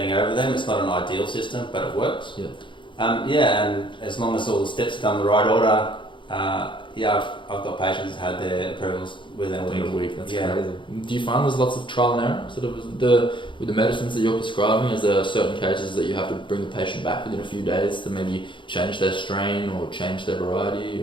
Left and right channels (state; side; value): late; right; 0.24 ms